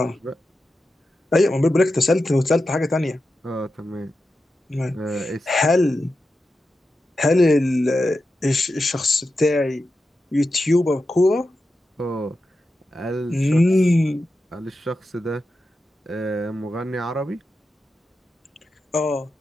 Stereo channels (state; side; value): normal; both; correlation 0.90